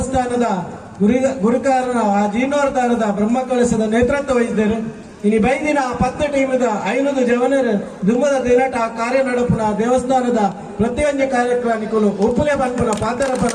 ಗುರುಕಾರನ ಆ ಜೀರ್ಣೋದ್ಧಾರದ ಬ್ರಹ್ಮ ಕಳಸದ ನೇತೃತ್ವ ವಹಿಸಿದರು. ಇನ್ನು ಬೈದಿನ 10 ಟೀಮದ 500 ಜವನರು ದುಮ್ಮದ ದಿನಟ ಆ ಕಾರ್ಯ ನಡಪುನ ದೇವಸ್ಥಾನದ ಪ್ರತಿಯೊಂದು ಕಾರ್ಯಕ್ರಮಗಳು ಒಪ್ಪುಲೆ ಬಂಪುನ ಪಾತ್ರ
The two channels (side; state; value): both; identical; correlation 1.00